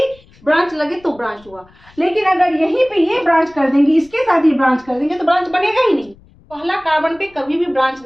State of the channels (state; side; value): noise; left; rumble, 28 dB below the sound